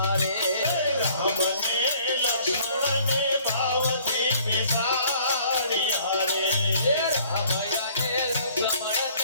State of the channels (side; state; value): both; inverted; correlation -0.57